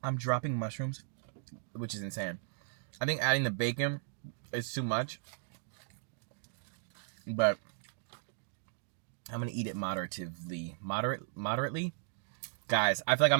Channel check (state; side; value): silent; left; digital silence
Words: I'm dropping mushrooms, which is insane. I think adding the bacon is too much, but I'm gonna eat it moderately. Moderately, guys. I feel like I'm